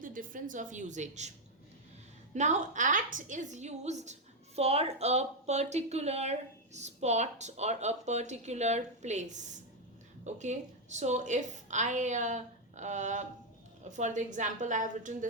difference of usage. Now, at is used for a particular spot or a particular place. Okay, so if for the example, I have written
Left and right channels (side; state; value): both; normal; correlation 0.02